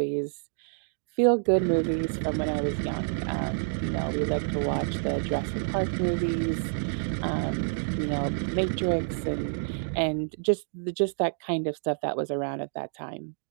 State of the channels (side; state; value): left; silent; digital silence